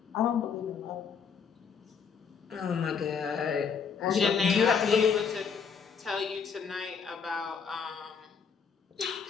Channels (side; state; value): right; quieter; 6.4 dB